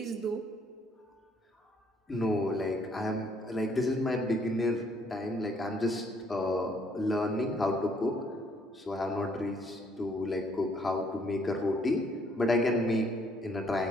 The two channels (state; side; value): normal; both; correlation 0.66